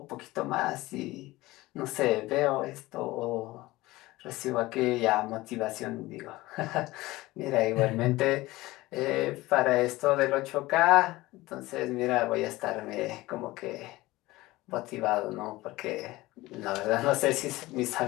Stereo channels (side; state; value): right; quieter; 19.1 dB